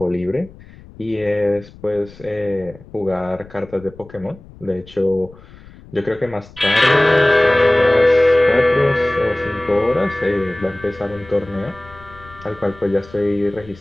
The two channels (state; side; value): noise; left; rumble, 21 dB below the sound